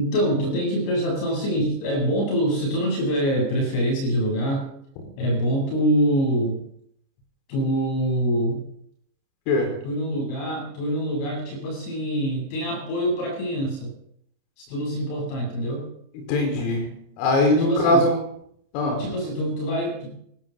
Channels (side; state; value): right; late; 29 ms